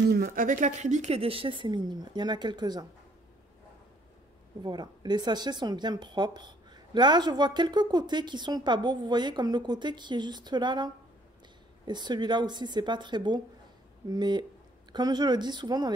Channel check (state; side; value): normal; both; correlation 0.63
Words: Avec l'acrylique, les déchets, c'est minime. Il y en a quelques-uns. Voilà. Les sachets sont bien propres. Là, je vois quelques côtés qui sont pas beaux. Vous voyez, comme le côté qui est juste là, là. Et celui-là aussi, c'est pas très beau. Mais, comme je le dis souvent dans